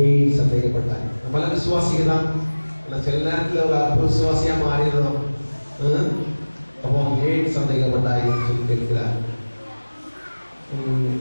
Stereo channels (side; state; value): both; inverted; correlation -1.00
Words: சந்தேகப்பட்டார்? நம்மள விசுவாசிங்க தான், சில நேரத்தில் ஒரு அற்ப விசுவாசியா மாறிடுறோம். அப்போ ஏன் சந்தேகப்பட்டாய் என்று சொல்லி கேட்கிறார்.